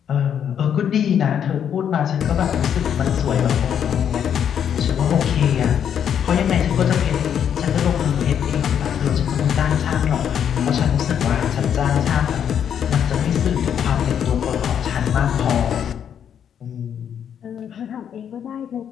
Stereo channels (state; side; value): quieter; right; 8.7 dB